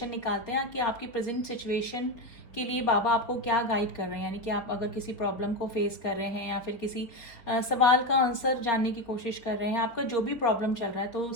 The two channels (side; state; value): right; late; 4.2 ms